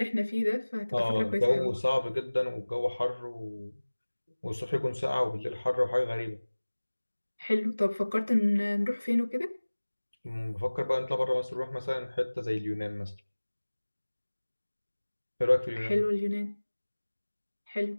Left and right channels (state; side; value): inverted; both; correlation -1.00